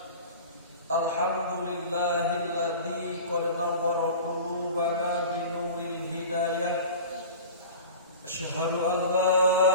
Alhamdulillahilladzi qad nawwara qulubana binuril hidayah. Asyhadu an la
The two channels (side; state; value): both; inverted; correlation -0.36